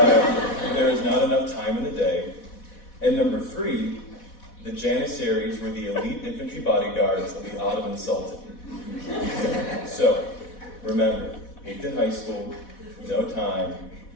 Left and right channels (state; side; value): late; right; 4.1 ms